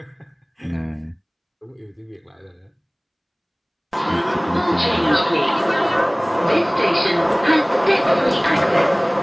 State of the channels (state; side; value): identical; both; correlation 1.00